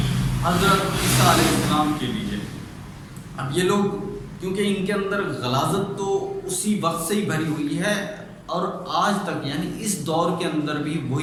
حضرت عیسیٰ علیہ السلام کے لیے۔ اب یہ لوگ کیونکہ ان کے اندر غلاظت تو اسی وقت سے ہی بھری ہوئی ہے اور آج تک، یعنی اس دور کے اندر بھی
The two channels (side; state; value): both; identical; correlation 1.00